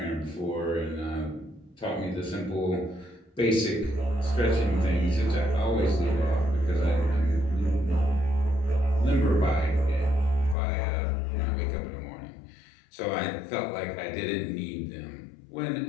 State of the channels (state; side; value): drops out; right; at 10.6 s